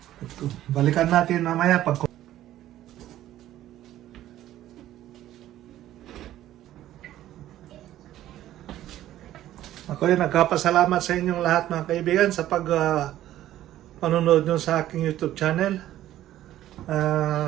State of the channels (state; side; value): quieter; left; 13.3 dB